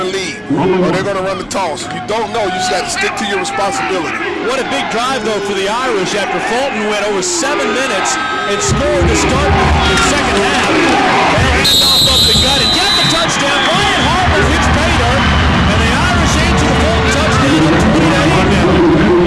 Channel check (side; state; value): both; identical; correlation 1.00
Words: lead, or they're going to run the toss. You don't know. You just got to stick to your responsibility. What a big drive, though, for the Irish after Fulton went over 7 minutes and scored to start the second half. They hand off up the gut and get the touchdown. Brian Harper hits pay dirt, and the Irish answer the Fulton touchdown at 20-8 now.